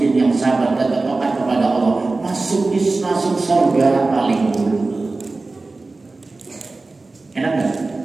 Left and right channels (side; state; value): left; quieter; 3.4 dB